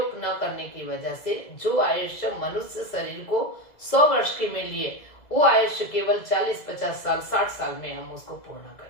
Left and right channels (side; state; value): right; late; 2.0 ms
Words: न करने की वजह से जो आयुष्य मनुष्य शरीर को 100 वर्ष के में लिए, वो आयुष्य केवल 40, 50 साल, 60 साल में हम उसको पूर्ण